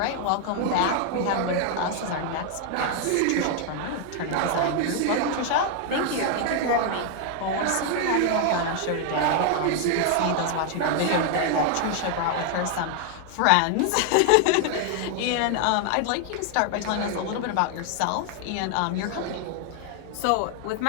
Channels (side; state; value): both; different; correlation 0.00